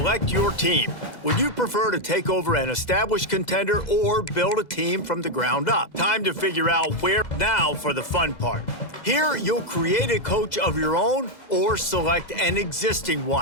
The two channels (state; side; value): late; right; 2.0 ms